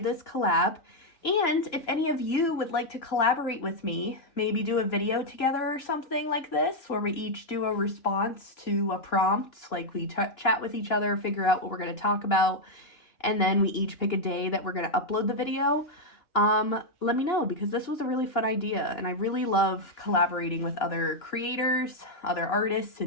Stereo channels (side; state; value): right; late; 2.9 ms